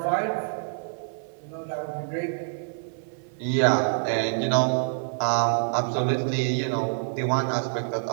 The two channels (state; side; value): silent; left; 61 dB below the other